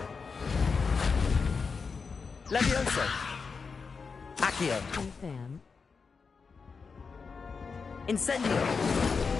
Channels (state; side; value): quieter; right; 5.1 dB